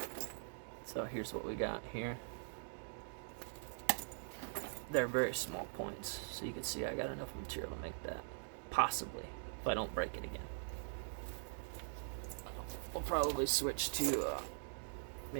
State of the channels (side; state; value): left; silent; digital silence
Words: So here's what we got here. They're very small points, so you can see I got enough material to make that. Possibly, if I don't break it again. We'll probably switch to